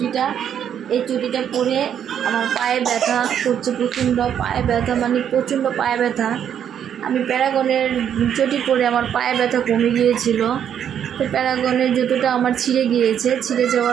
চটিটা পরে আমার পায়ে ব্যথা করছে, প্রচণ্ড পায়ে ব্যথা। আমি প্যারাগনের চটি পরে আমার পায়ে ব্যথা কমে গিয়েছিল। তো প্যারাগনের জুতোটা আমার ছিঁড়ে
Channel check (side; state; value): left; quieter; 9.1 dB